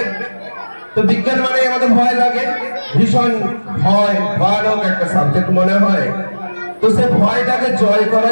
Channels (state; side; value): inverted; both; correlation -1.00